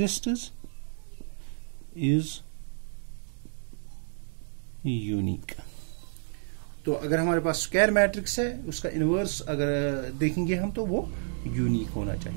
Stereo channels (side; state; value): left; silent; digital silence